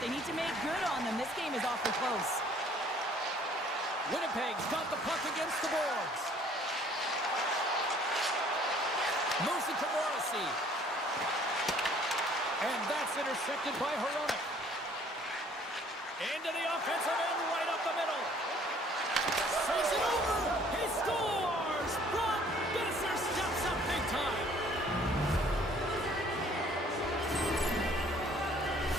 they need to make good on them. This game is awfully close. Winnipeg's got the puck against the boards. Moves it to Morrissey. And that's intercepted by Hronek. Into the offensive end, right up the middle. Saves it over. He scores! Brock Besser steps up big time.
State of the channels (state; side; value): normal; both; correlation 0.57